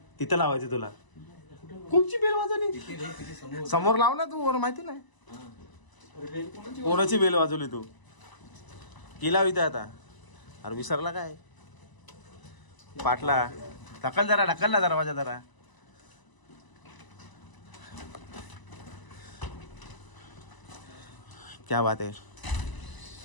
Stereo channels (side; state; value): right; late; 1.0 ms